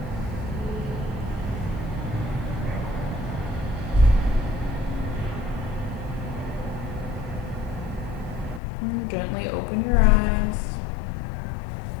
And gently open your eyes.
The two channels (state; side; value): drops out; right; at 8.6 s